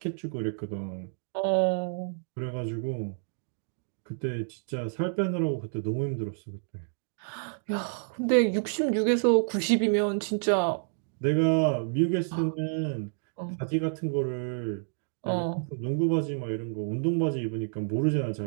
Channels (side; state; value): left; silent; digital silence